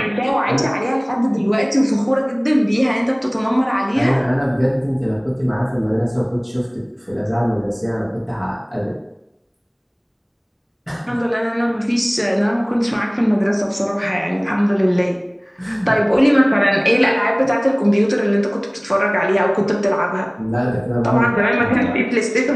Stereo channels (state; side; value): identical; both; correlation 1.00